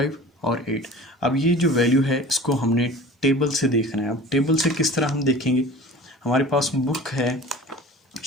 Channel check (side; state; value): both; normal; correlation 0.40